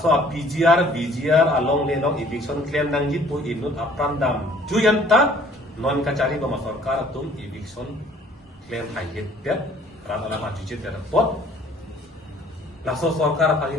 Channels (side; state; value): both; normal; correlation 0.56